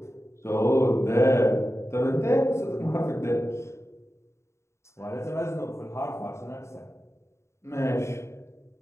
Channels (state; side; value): late; right; 0.13 ms